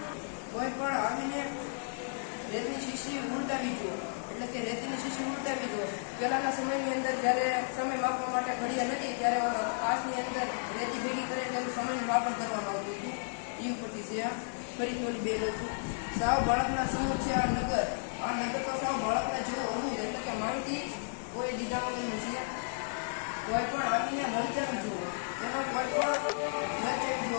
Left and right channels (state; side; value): silent; right; 56 dB below the other